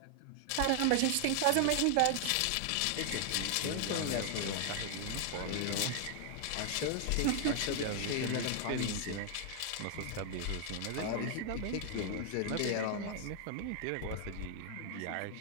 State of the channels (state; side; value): different; both; correlation 0.00